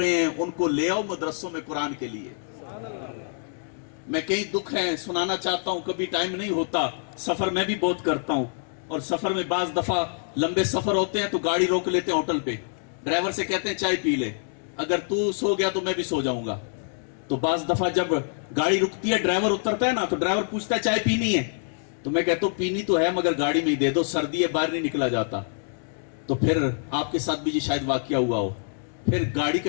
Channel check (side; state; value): right; silent; digital silence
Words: ہیں، ان کو لے آؤ مدرسوں میں قرآن کے لیے۔ میں کئی دکھ ہیں سنانا چاہتا ہوں، کبھی ٹائم نہیں ہوتا، سفر میں بھی بہت کرتا ہوں، اور سفر میں بعض دفعہ لمبے سفر ہوتے ہیں تو گاڑی روک لیتے ہیں ہوٹل پہ، ڈرائیور سے کہتے ہیں چائے پی لے، اگر تو سو گیا تو میں بھی سو جاؤں گا۔ تو بعض دفعہ جب گاڑی رکتی ہے ڈرائیور اترتا ہے نا تو ڈرائیور پوچھتا ہے چائے پینی ہے، تو میں کہتا ہوں پینی تو ہے مگر گاڑی میں ہی دے دو، سردی ہے باہر نہیں نکلا جاتا۔ تو پھر آپ کے ساتھ بھی یہ شاید واقعہ ہوا ہو، پھر گاڑی